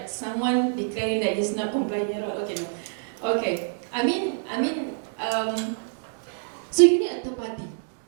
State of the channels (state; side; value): silent; left; 61 dB below the other